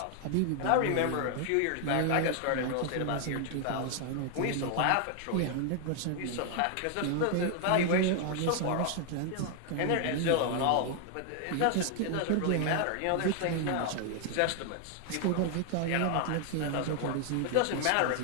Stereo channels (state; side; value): different; both; correlation 0.00